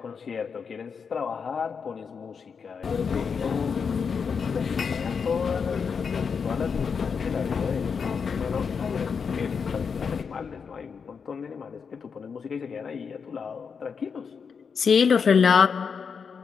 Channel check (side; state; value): right; quieter; 6.0 dB